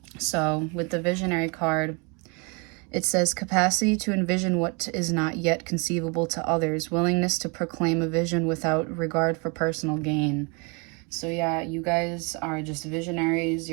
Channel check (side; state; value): left; quieter; 32.3 dB